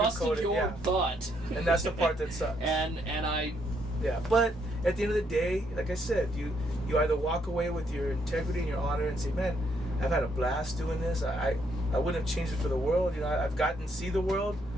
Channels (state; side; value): normal; both; correlation 0.73